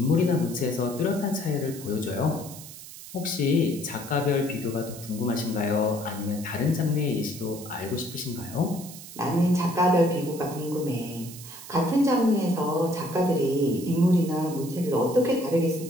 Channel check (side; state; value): right; noise; hiss, 14 dB below the sound